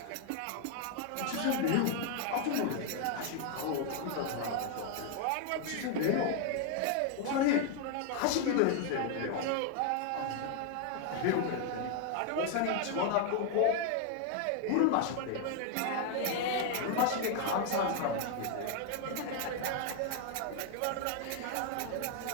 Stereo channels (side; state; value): both; different; correlation 0.00